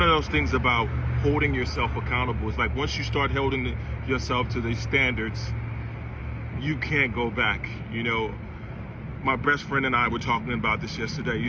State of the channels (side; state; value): both; identical; correlation 1.00